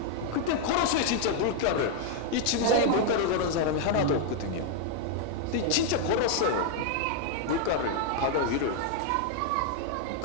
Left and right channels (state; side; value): different; both; correlation 0.00